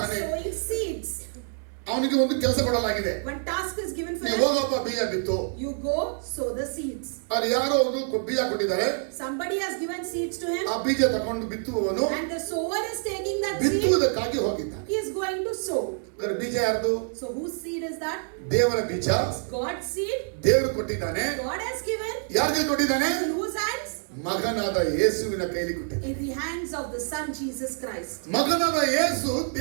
sowing seeds. ಅವನಿಗೆ ಒಂದು ಕೆಲಸ ಕೊಡಲಾಗಿದೆ. One task is given for ನೀವು him. ಹೋಗಪ್ಪ ಬೀಜ ಬಿತ್ತು. You go sow the seeds. ಅಲ್ಲಿ ಯಾರೋ ಒಂದು ಬೀಜ ಕೊಟ್ಟಿದ್ದಾರೆ. Somebody has given seeds to him. ಆ ಬೀಜ ತಕೊಂಡು ಬಿತ್ತುವವನು And the sower is taking that seed. ಬಿತ್ತುವುದಕ್ಕಾಗಿ ಹೋಗಿದ್ದಾನೆ. He is going to sow. ಬೀಜ ಯಾರ್ದು? So whose seed is that? ದೇವರ ಬೀಜ. God's seed. ದೇವರು ಕೊಟ್ಟಿದ್ದಾನೆ. God has given. ಯಾರಿಗೆ ಕೊಟ್ಟಿದ್ದಾನೆ? In whose hands? ಮಗನಾದ ಯೇಸುವಿನ ಕೈಲಿ ಕೊಟ್ಟಿದ್ದಾನೆ. In the hands of the Son Jesus Christ. ಮಗನಾದ ಯೇಸು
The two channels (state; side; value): silent; left; 60 dB below the other